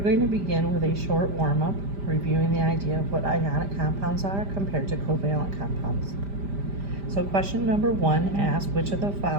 going to begin with a short warm-up, reviewing the idea of what ionic compounds are compared to covalent compounds. So question number 1 asks, which of the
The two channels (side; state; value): left; late; 5.0 ms